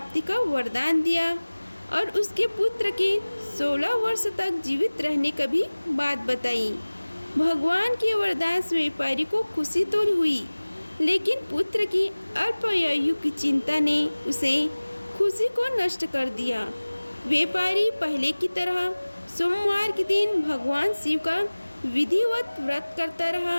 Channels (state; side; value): inverted; both; correlation -1.00